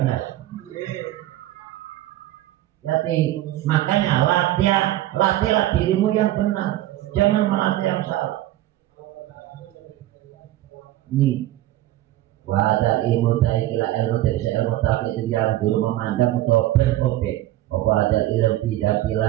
Jadi makanya latihlah dirimu yang benar, jangan melatih yang salah. Ini wadah ilmu taikila ilmu dari ilmu tapi itu yang dulu memandang untuk berobjek. Wadah ilmu tidak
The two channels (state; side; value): quieter; left; 15.0 dB